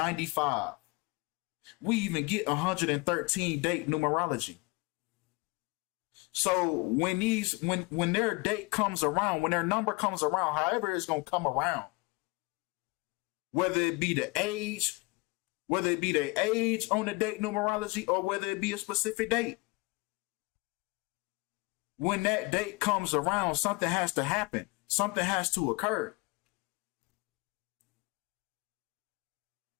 We even get 113 date numerology. So when their date comes around, when their number comes around, however it's gonna come around, whether it be the age, whether it be their age on the date numerology, or whether it be a specific date, when that date comes around, something has to happen. Something has to occur.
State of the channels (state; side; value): quieter; right; 26.4 dB